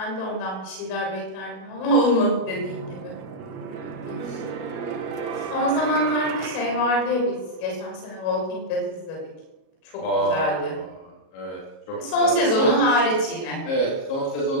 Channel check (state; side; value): late; right; 37 ms